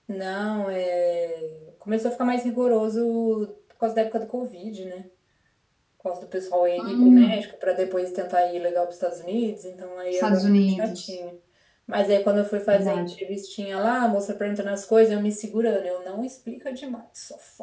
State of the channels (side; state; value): both; identical; correlation 1.00